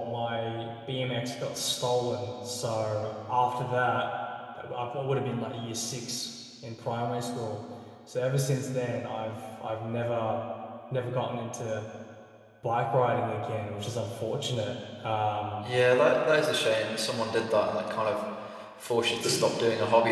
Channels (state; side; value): identical; both; correlation 1.00